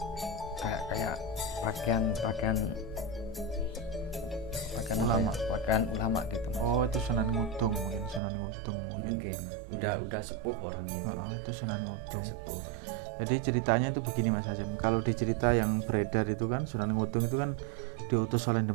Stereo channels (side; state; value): left; drops out; at 8.2 s